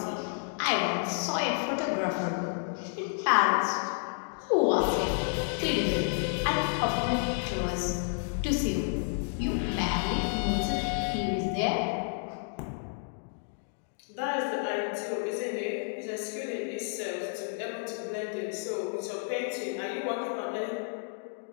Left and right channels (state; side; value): silent; right; 57 dB below the other